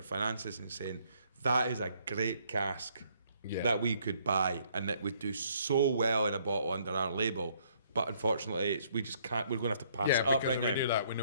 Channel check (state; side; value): inverted; both; correlation -0.66